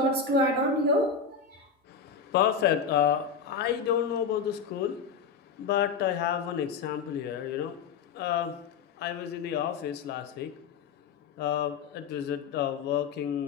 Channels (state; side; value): quieter; right; 5.8 dB